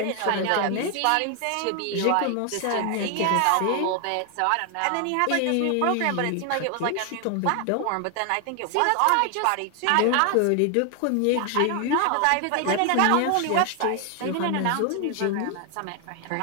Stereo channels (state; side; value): different; both; correlation 0.00